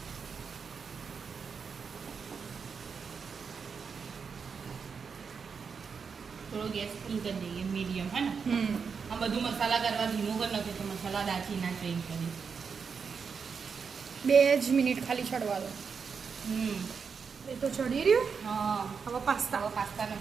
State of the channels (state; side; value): quieter; left; 5.9 dB